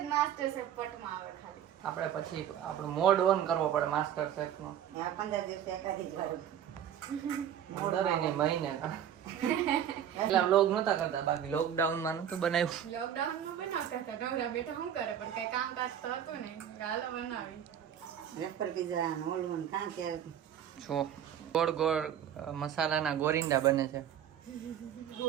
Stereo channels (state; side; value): quieter; left; 9.8 dB